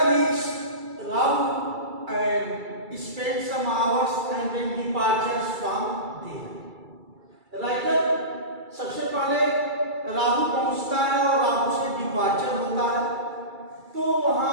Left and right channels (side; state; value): left; late; 2.3 ms